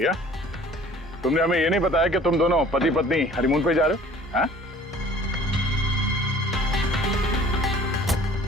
तुमने हमें ये नहीं बताया कि तुम दोनों पति पत्नी हनीमून पे जा रहे हो? हाँ?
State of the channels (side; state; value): both; normal; correlation 0.50